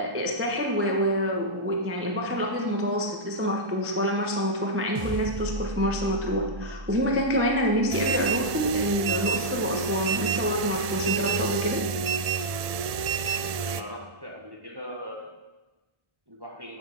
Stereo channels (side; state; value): left; late; 1.7 ms